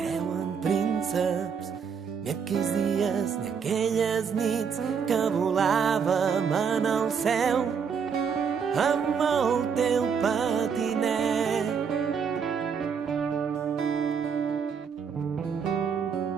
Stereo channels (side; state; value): left; quieter; 6.5 dB